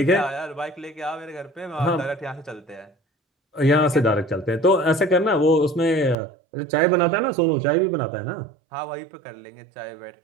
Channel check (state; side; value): drops out; left; at 6.2 s